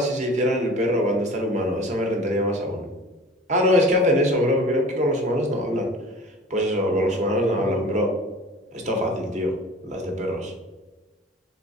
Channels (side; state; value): both; normal; correlation 0.42